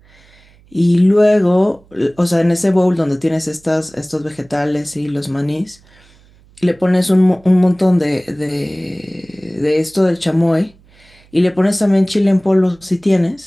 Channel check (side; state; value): right; noise; hum, 29 dB below the sound